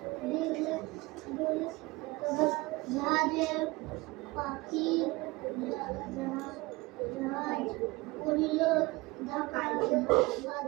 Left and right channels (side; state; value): left; quieter; 22.5 dB